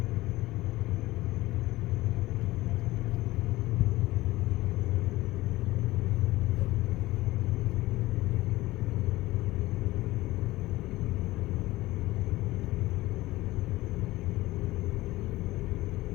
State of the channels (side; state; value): right; quieter; 18.3 dB